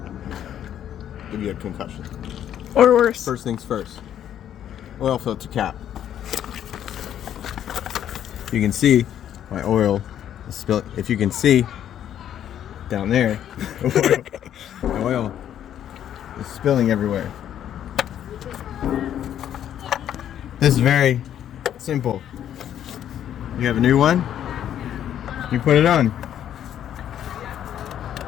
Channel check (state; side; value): quieter; right; 10.4 dB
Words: give you a concussion. Or worse. First things first, oil filter cap. You can see my oil is spilling. If you can see down there, the oil is spilling everywhere. This is very simple. You have a new one, you put it on.